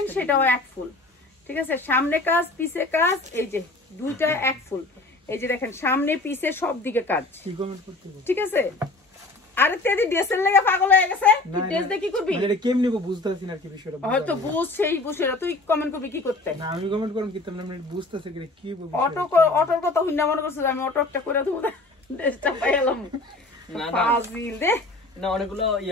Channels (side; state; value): right; quieter; 3.0 dB